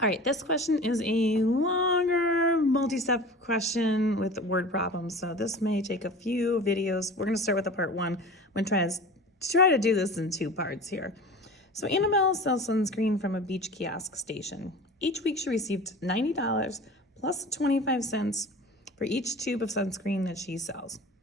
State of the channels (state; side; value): normal; both; correlation 0.37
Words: All right, this question is a longer multi-step question with word problems, so this may take a few videos. We're going to start with the part one. I'm going to try to do this in two parts here. So Annabelle sells sunscreen from a beach kiosk station. Each week she received $90 plus 25 cents for each tube of sunscreen that she sells.